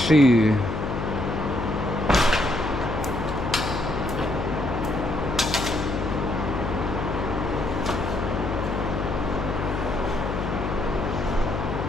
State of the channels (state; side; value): noise; left; hum, 3 dB below the sound